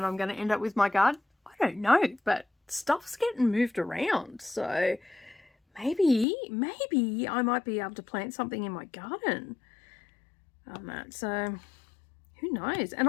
I'm going to end up with my garden? I don't know, but stuff's getting moved around. So maybe I might be able to plant something in my garden on that. So who knows? And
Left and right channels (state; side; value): drops out; right; at 6.2 s